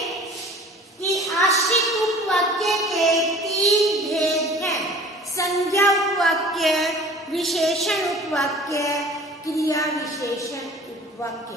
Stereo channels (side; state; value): both; normal; correlation 0.45